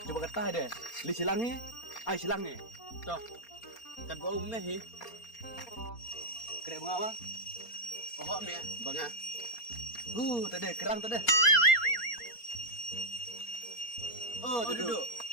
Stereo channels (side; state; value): right; late; 4.3 ms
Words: Coba kata deh. Li silang ni, ai silang ni. To. Kat bo me hi. Kira bunga apa? Oh me, banga. Tadi kerang tadi. Oh, duduk.